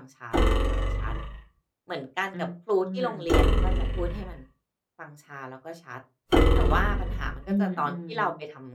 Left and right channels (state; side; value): identical; both; correlation 1.00